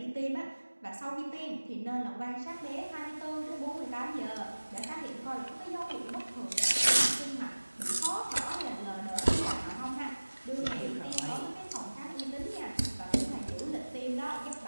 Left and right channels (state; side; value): inverted; both; correlation -1.00